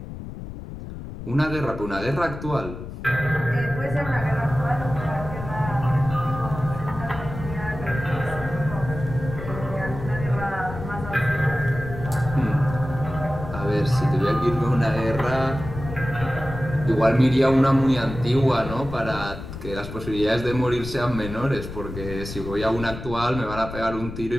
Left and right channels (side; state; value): left; noise; rumble, 10 dB below the sound